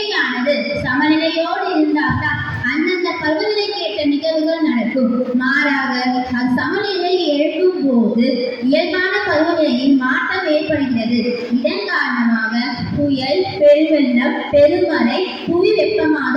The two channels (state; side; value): identical; both; correlation 1.00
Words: சமநிலையோடு இருந்தால்தான் அந்தந்த பருவநிலைக்கு ஏற்ற நிகழ்வுகள் நடக்கும். மாறாக அது சமநிலையை எழுப்பும் போது இயல்பான பருவநிலையில் மாற்றம் ஏற்படுகிறது. இதன் காரணமாக புயல், பெருவெள்ளம், பெருமழை, புவி